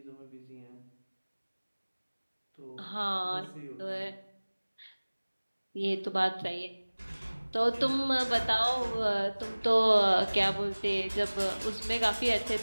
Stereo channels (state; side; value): inverted; both; correlation -1.00